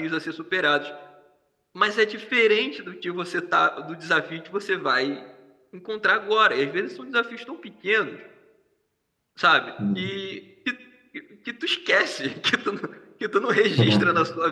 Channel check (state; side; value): identical; both; correlation 1.00